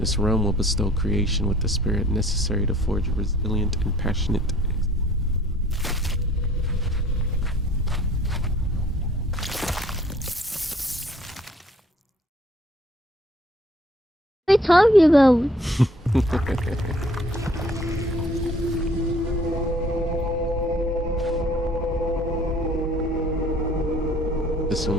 realm will bestow creation with the spirit necessary to forge a resilient and passionate What are you talking about? This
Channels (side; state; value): both; normal; correlation 0.57